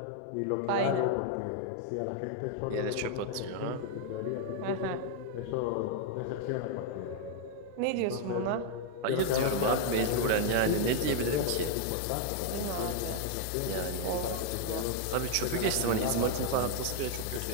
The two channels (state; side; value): different; both; correlation 0.00